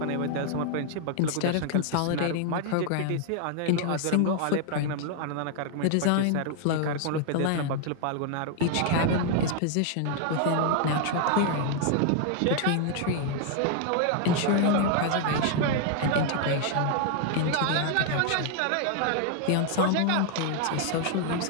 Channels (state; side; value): different; both; correlation 0.00